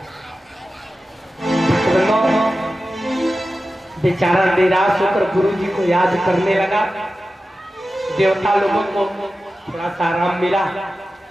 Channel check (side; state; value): both; normal; correlation 0.94